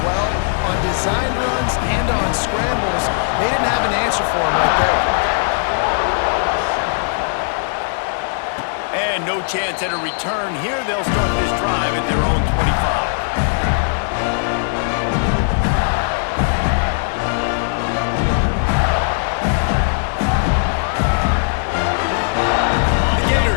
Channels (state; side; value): silent; right; digital silence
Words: well. On designed runs and on scrambles, they didn't have an answer for him right there. And no chance at a return here. They'll start this drive at their own 25.